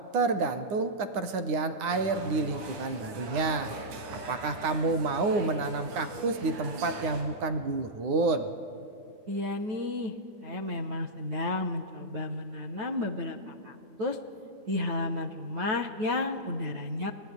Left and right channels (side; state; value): left; late; 9.7 ms